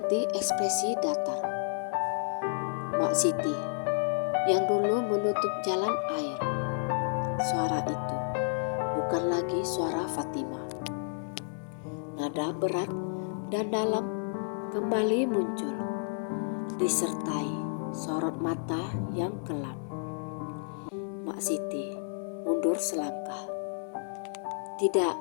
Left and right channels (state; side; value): silent; right; digital silence